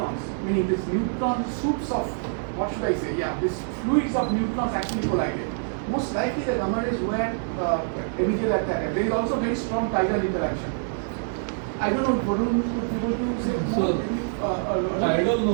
meaning this neutron soups of, what should I say, this fluids of neutrons actually collided. Most likely the gamma rays were emitted at that time. There is also very strong tidal interaction. I don't know, Varun would be able to say more? Tidal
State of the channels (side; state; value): left; silent; 61 dB below the other